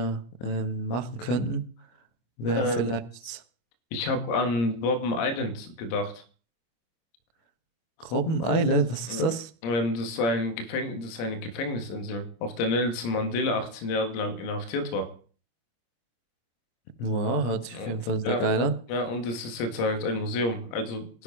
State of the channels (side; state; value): right; late; 25 ms